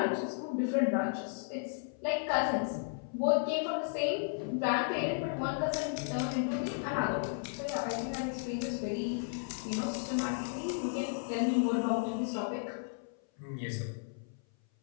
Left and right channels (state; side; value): silent; right; 55 dB below the other